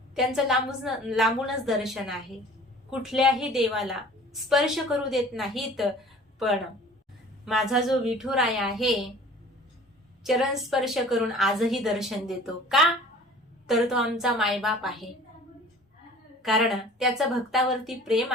त्यांचं लांबूनच दर्शन आहे. कुठल्याही देवाला स्पर्श करू देत नाहीत. पण माझा जो विठुराया आहे चरण स्पर्श करून आजही दर्शन देतो. का? तर तो आमचा मायबाप आहे. कारण त्याचं भक्तावरती प्रेम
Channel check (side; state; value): both; normal; correlation 0.46